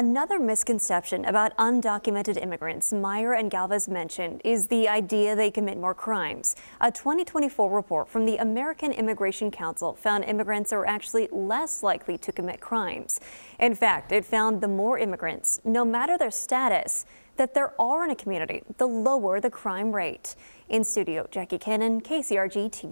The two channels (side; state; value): both; inverted; correlation -1.00